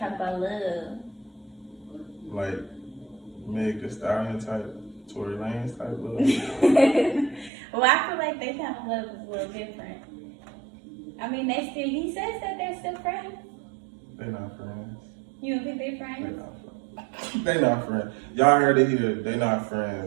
about love. Like Meg Thee Stallion type, Tory Lanez type love. Well, I feel like their kind of love is a little different. I mean, he says that they're still friends. They not friends. You don't think they're friends? They not friends. Y'all heard it here. They not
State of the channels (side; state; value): left; drops out; at 7.5 s